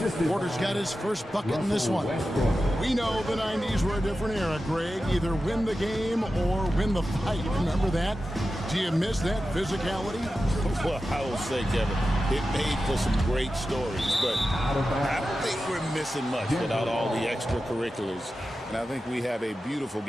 Porter's got his first bucket in this one. We know the 90s were a different era, Greg. Either win the game or win the fight. Remember that? Do you miss that physicality? Well, I will say, Kevin, it made for some great stories, but I don't think we're missing much without all the extracurriculars. And I think we have a beautiful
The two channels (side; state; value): both; normal; correlation 0.92